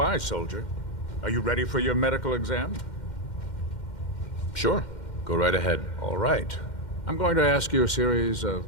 soldier. Are you ready for your medical exam? Sure. Go right ahead. All right. I'm going to ask you a series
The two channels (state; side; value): late; right; 2.1 ms